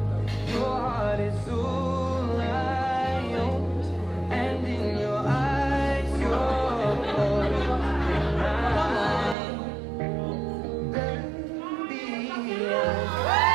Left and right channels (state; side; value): drops out; left; at 9.3 s